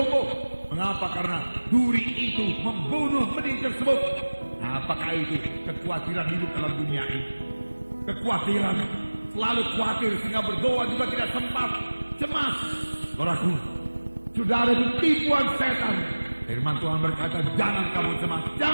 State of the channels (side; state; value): both; inverted; correlation -1.00